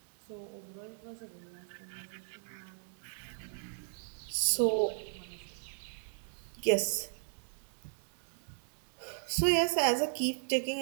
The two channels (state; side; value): silent; left; digital silence